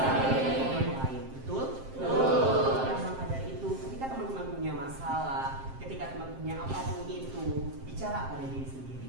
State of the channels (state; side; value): late; left; 7.6 ms